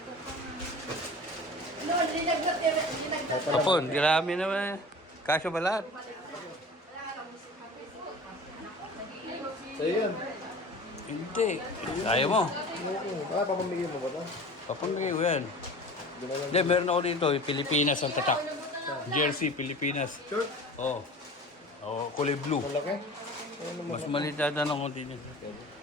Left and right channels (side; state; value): both; normal; correlation 0.39